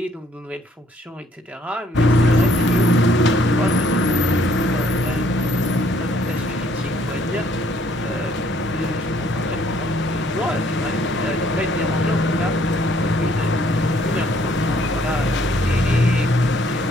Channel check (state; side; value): normal; both; correlation 0.64